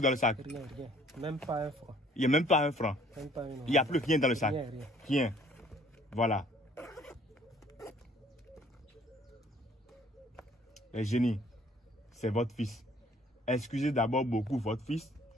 dans le sac? Rien, rien. Même pas un franc. Il n'y a même pas un franc. Même pas Il n'y a plus rien dans le sac. Rien, rien. Rien. Voilà. Les génies, c'est votre fils. Excusez d'abord beaucoup votre fils.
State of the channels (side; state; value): both; normal; correlation 0.57